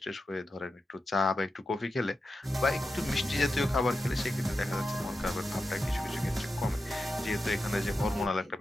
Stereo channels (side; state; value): both; normal; correlation 0.90